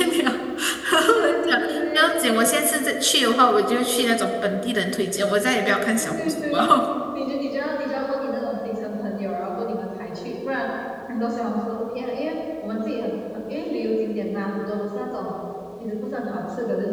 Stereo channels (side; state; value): both; identical; correlation 1.00